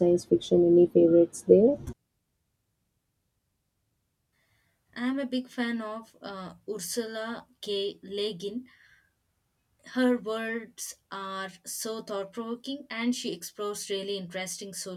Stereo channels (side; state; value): both; identical; correlation 1.00